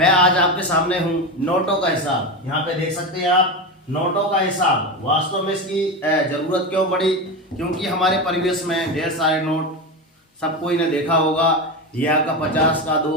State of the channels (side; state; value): both; normal; correlation 0.19